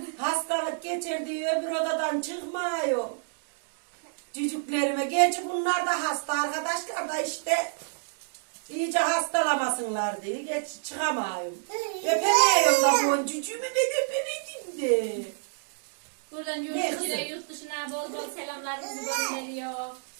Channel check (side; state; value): left; silent; digital silence